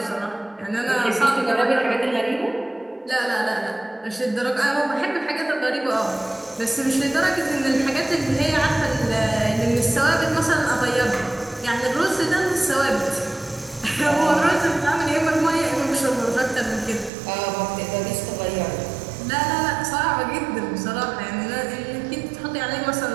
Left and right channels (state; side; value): drops out; left; at 17.1 s